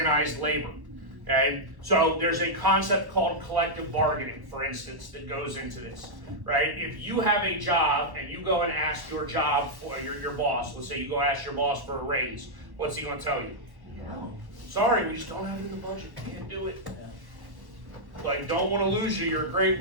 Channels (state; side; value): late; left; 1.1 ms